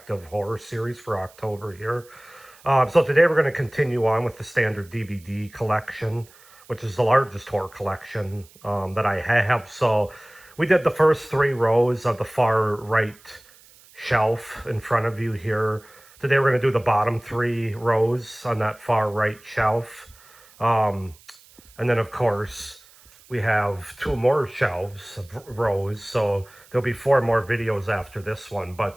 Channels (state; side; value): noise; right; hiss, 26 dB below the sound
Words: of horror series for October here. So today we're going to continue on with the standard DVD collection, which is the largest horror collection that I have. So we did the first three rows of the far right shelf in front of you here. Today we're going to do the bottom three rows on that far right shelf. And then, of course, we have two more shelves of rows, so there'll be four more videos after this one.